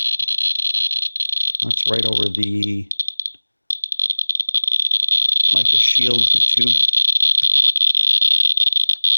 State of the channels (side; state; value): both; inverted; correlation -1.00